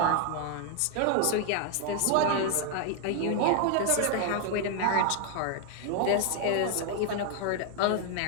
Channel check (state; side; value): different; both; correlation 0.00